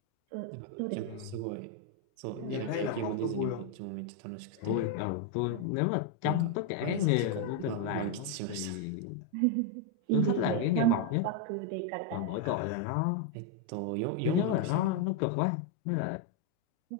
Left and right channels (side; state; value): both; different; correlation 0.01